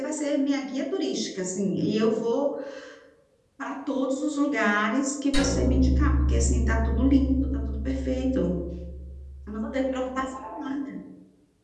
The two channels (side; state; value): both; identical; correlation 1.00